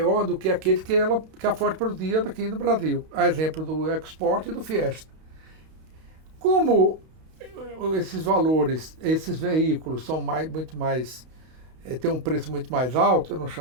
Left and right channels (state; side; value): late; left; 32 ms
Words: do que aquele que a Ford produzia aqui no Brasil. A exemplo do EcoSport e do Fiesta. Como esses valores, esses veículos são muito mais, têm um preço muito mais alto, eu não